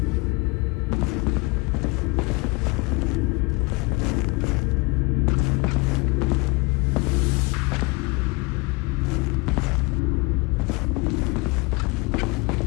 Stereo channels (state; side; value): quieter; right; 26.6 dB